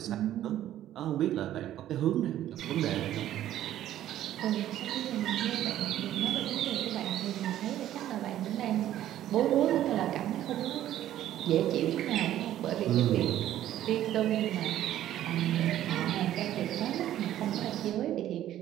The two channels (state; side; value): quieter; left; 12.5 dB